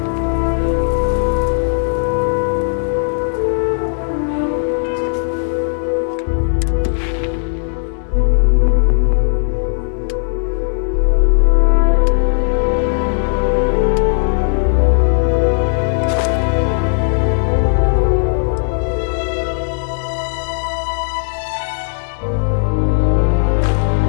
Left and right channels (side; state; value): right; silent; digital silence